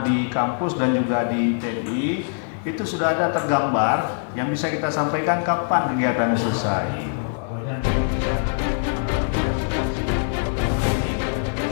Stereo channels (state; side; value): silent; right; digital silence